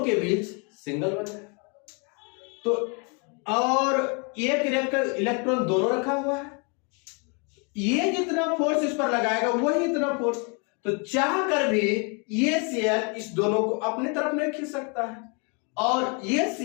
के बीच सिंगल बन है। तो और एक इलेक्ट्रॉन दोनों रखा हुआ है, ये जितना फोर्स इस पर लगाएगा वही इतना फोर्स। तो चाह कर भी ये Cl इस दोनों को अपने तरफ नहीं खींच सकता है और ये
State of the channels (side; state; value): right; quieter; 34.9 dB